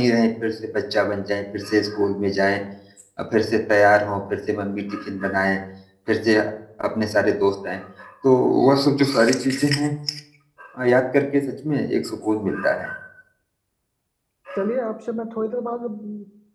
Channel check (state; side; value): identical; both; correlation 1.00